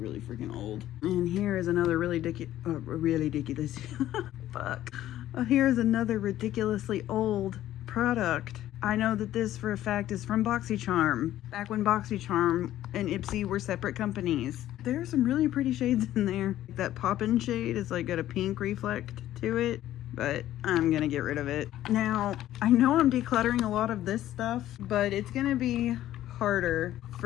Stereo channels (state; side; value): quieter; right; 13.3 dB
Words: really freaking old. And here is another really ridiculous. Fuck. Here is another ridiculously old product. I know that this for a fact is from BoxyCharm. Back when BoxyCharm and Ipsy were separate companies. There are some really pretty shades in there. That Poppin' shade is like got a pink reflect to it, but I'm gonna get rid of it. Now, I know I'm decluttering a lot of this stuff, but it's gonna be harder